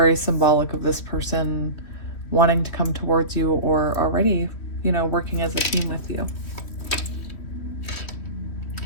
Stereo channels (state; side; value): late; right; 3.1 ms